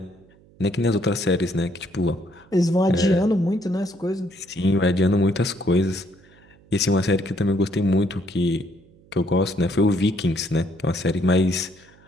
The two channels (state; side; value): noise; right; hum, 28 dB below the sound